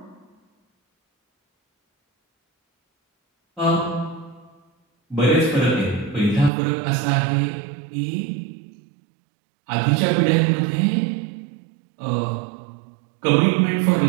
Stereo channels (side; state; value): left; drops out; at 6.5 s